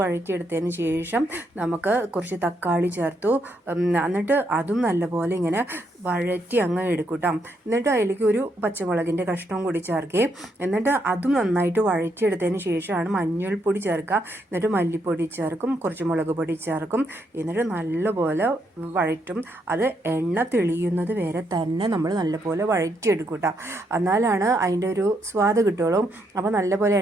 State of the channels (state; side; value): normal; both; correlation 0.77